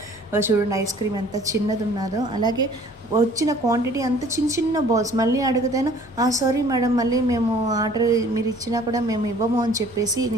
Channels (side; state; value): both; normal; correlation 0.53